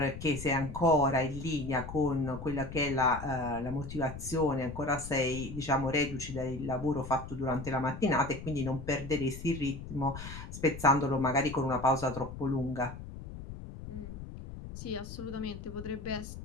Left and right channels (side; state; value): left; noise; rumble, 11 dB below the sound